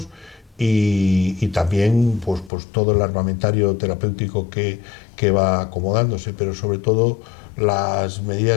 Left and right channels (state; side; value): drops out; right; at 2.5 s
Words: y también pues todo el armamentario terapéutico que va acomodándose, pero sobre todo las